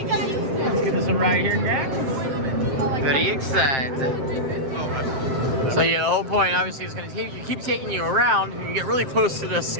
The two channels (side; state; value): left; late; 7.6 ms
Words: give this a ride here, Jack. Very excited. So yeah, the whole point obviously is going to keep taking you around, and you get really close to the